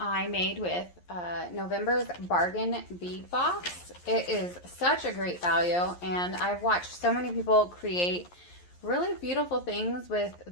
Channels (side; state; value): right; late; 11 ms